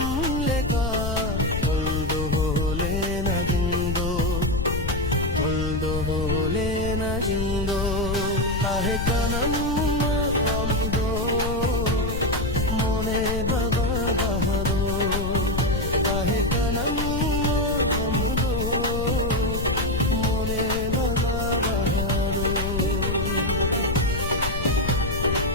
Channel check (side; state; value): left; noise; rumble, 3 dB below the sound